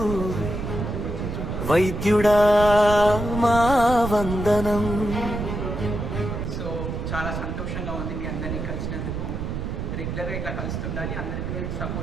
వైద్యుడా మా వందనం. సో చాలా సంతోషంగా ఉంది మీ అందరినీ కలిసినందుకు. రెగ్యులర్గా ఇట్లా కలుస్తుండాలి, అందరికీ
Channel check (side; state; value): right; noise; rumble, 4 dB below the sound